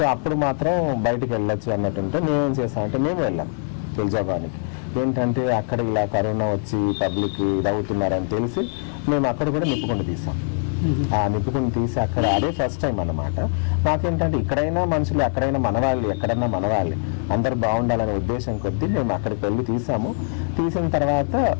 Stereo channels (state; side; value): silent; right; 58 dB below the other